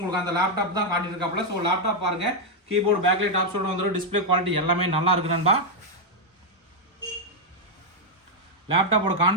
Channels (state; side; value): normal; both; correlation -0.01